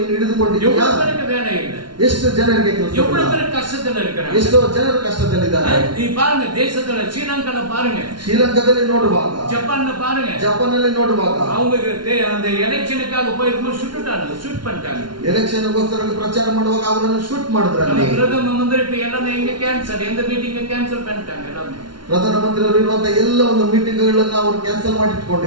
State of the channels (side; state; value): left; late; 0.72 ms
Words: ಹಿಡಿದುಕೊಂಡಿದ್ದೀಯಾ? எவ்வளவு பேருக்கு வேலை இல்லை? ಎಷ್ಟು ಜನರಿಗೆ ಕೆಲಸ ಇಲ್ಲ? எவ்வளவு பேர் கஷ்டத்துல இருக்கிறாங்க? ಎಷ್ಟೋ ಜನರು ಕಷ್ಟದಲ್ಲಿದ್ದಾರೆ. நீ பாருங்க, தேசத்துல ஸ்ரீலங்கால பாருங்க, ಶ್ರೀಲಂಕಾದಲ್ಲಿ ನೋಡುವಾಗ, ஜப்பான்ல பாருங்க, ಜಪಾನ್ನಲ್ಲಿ ನೋಡುವಾಗ அவங்க அந்த எலெக்ஷனுக்காக போயிருக்கும்போது சுட்டுட்டாங்க, ஷூட் பண்ணிட்டாங்க. ಎಲೆಕ್ಷನ್ ಗೋಸ್ಕರ ಪ್ರಚಾರ ಮಾಡುವಾಗ ಅವರನ್ನು ಶೂಟ್ ಮಾಡಿದ್ರಲ್ಲಿ. பிரதம மந்திரி இப்ப எல்லாமே எங்க கேன்சல், எந்த மீட்டிங் கேன்சல் பண்ணிட்டாங்க எல்லாமே. ಪ್ರಧಾನಮಂತ್ರಿ ಅವರು ಇರುವಂತಹ ಎಲ್ಲ ಒಂದು ಮೀಟಿಂಗ್ ಗಳನ್ನ ಅವರು ಕ್ಯಾನ್ಸಲ್ ಮಾಡಿ